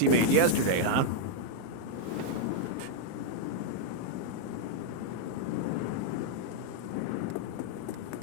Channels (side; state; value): both; different; correlation -0.01